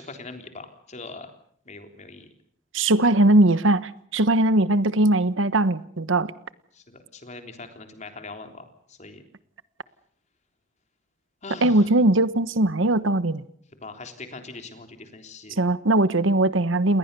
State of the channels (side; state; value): both; normal; correlation 0.38